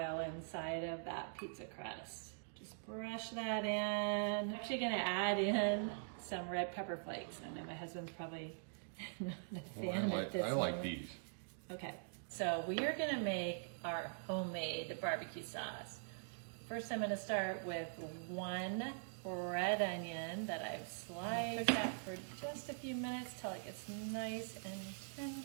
inside of that pizza crust. Just brush that in. I'm actually gonna add in some red pepper flakes. I know my husband's probably not a fan at this I moment. like these. Okay, so we are gonna make our homemade barbecue sauce. First, I'm gonna start with one red onion that I've sliced. Cook that for just a few minutes till it gets nice and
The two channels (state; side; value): silent; left; digital silence